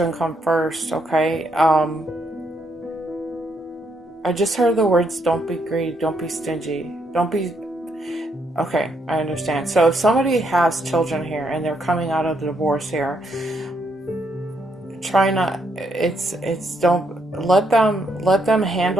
come first. Okay, I just heard the words, don't be greedy, don't be stingy, don't be. Okay, I understand. So if somebody has children here and they're coming out of the divorce here, try not, don't let them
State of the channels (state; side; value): normal; both; correlation 0.75